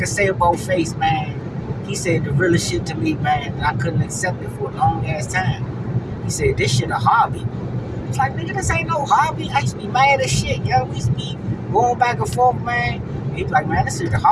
say about Face, man, he said the realest shit to me, man, and I couldn't accept it for a long ass time. He said, this shit a hobby. It's like, nigga, this ain't no hobby. I used to be mad as shit, yo. We used to be going back and forth, man. He's like, man, this is a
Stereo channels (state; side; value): identical; both; correlation 1.00